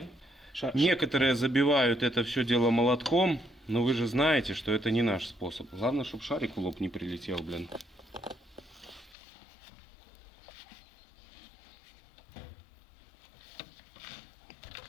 Некоторые забивают это все дело молотком, но вы же знаете, что это не наш способ. Главное, чтобы шарик в лоб не прилетел, блин.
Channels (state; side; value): drops out; right; at 9.2 s